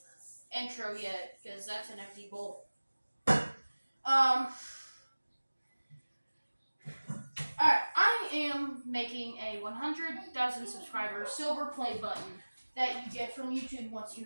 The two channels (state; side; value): inverted; both; correlation -1.00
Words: intro yet because that's an empty bowl. Alright, I am making a 100,000 subscriber silver play button that you get from YouTube once you